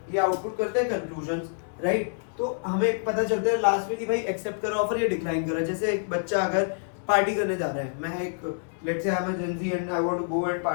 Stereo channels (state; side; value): silent; right; digital silence